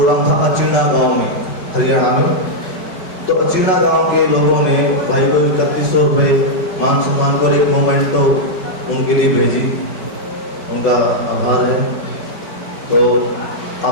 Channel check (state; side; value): late; right; 5.3 ms